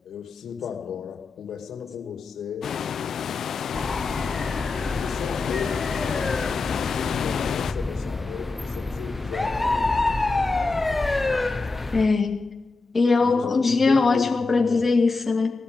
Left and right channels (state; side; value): quieter; right; 3.8 dB